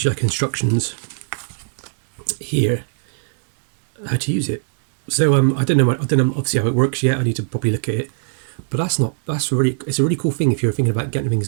you like instructions here how to use it. So I don't know obviously how it works yet. I need to probably look at it. But it's a really cool thing if you're thinking about getting things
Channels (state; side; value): silent; left; digital silence